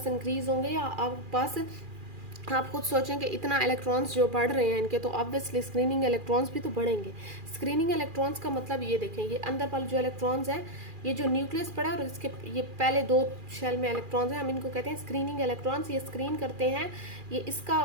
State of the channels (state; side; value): late; left; 2.4 ms